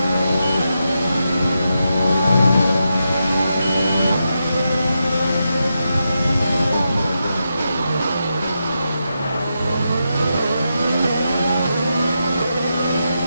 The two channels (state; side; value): inverted; both; correlation -0.86